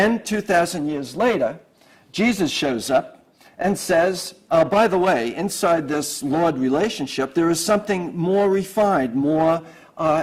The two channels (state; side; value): identical; both; correlation 1.00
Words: 2,000 years later, Jesus shows up and says, by the way, inside this Lord relationship, there is something more refined, more